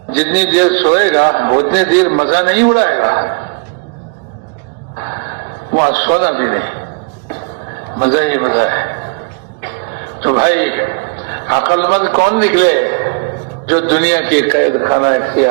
جتنی دیر سوئے گا اتنی دیر مزہ نہیں اڑائے گا، وہاں سونا بھی نہیں، مزہ ہی مزہ ہے۔ تو بھائی عقل مند کون نکلے جو دنیا کی قید خانہ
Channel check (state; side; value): quieter; left; 34.8 dB